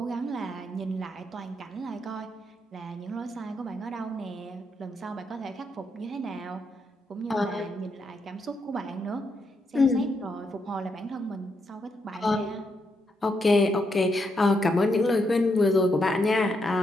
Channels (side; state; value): both; normal; correlation 0.80